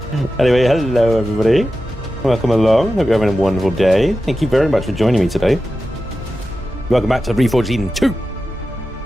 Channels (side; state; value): both; normal; correlation 0.92